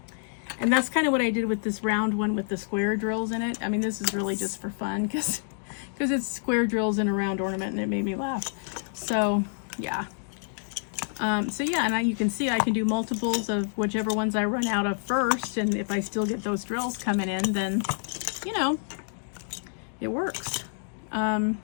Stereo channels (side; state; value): right; silent; digital silence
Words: And that's kind of what I did with this round one with the square drills in it. I mean, this is really just for fun because it's square drills in a round ornament, and it made me laugh. So yeah. So yeah, and you can see I can do multiples of whichever ones I run out of first, and if I still get those drills coming in, then, you know, it works.